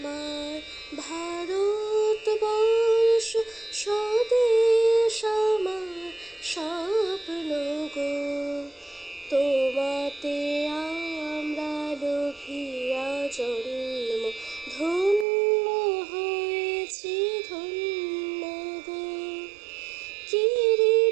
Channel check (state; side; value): drops out; left; at 15.2 s